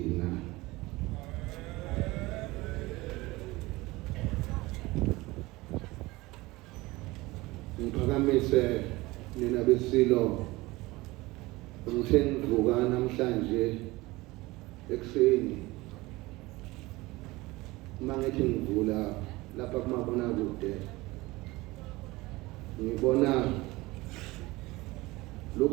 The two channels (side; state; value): left; quieter; 20.9 dB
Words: Ngiphakamise nina beSilo ngithe ngivuka namhlanje ekuseni mangithi ngivula lapha kumabonakude ngibona